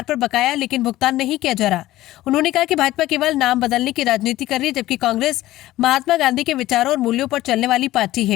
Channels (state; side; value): quieter; right; 15.9 dB